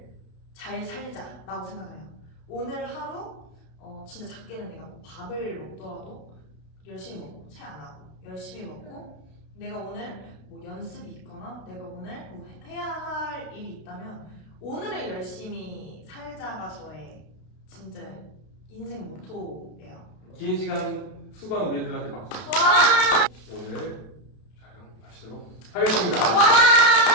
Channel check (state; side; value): late; right; 32 ms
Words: 잘 살자라고 생각을 해요. 오늘 하루 진짜 작게는 내가 뭐 밥을 먹더라도 열심히 먹고 채 안 하고 열심히 먹고 내가 오늘 뭐 연습이 있거나 내가 오늘 뭐 해야 할 일이 있다면 오늘을 열심히 살자가 저의 진짜 인생 모토예요. 긴 시간 수고한 우리들한테 박수. 와! 오늘 촬영 마치도록 하겠습니다. 와!